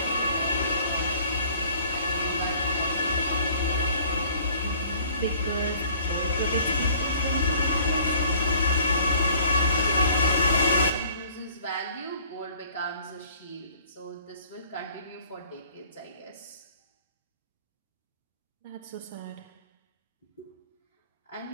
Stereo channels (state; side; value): inverted; both; correlation -0.53